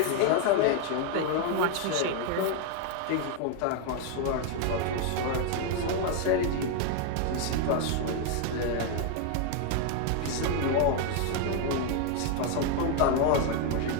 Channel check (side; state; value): both; different; correlation 0.00